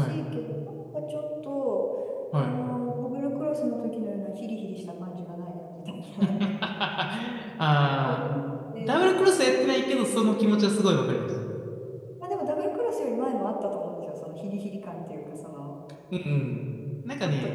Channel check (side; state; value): both; identical; correlation 1.00